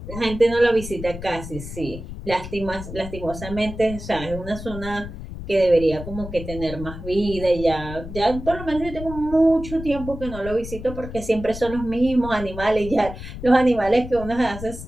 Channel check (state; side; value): noise; left; rumble, 10 dB below the sound